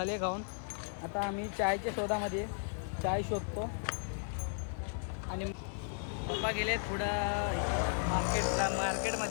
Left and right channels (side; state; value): right; silent; 54 dB below the other